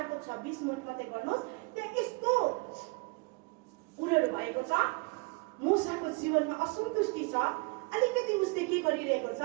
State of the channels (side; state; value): left; quieter; 29.4 dB